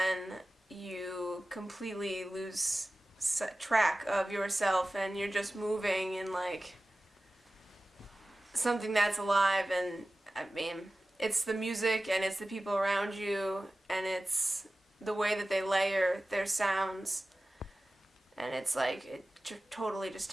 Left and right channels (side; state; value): both; normal; correlation 0.96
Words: you completely lose track of yourself and you're just moving in like something that's alive. And I mean, it's the music and it's the people around you and it's the way that they layer their sounds. And it's like, it totally just